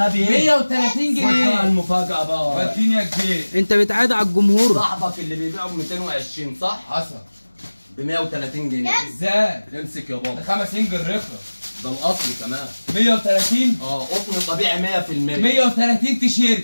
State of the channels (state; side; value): inverted; both; correlation -1.00